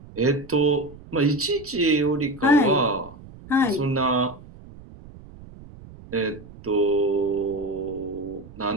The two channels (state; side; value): noise; right; rumble, 19 dB below the sound